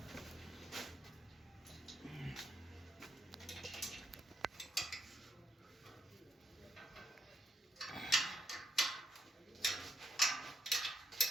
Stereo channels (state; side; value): normal; both; correlation 0.77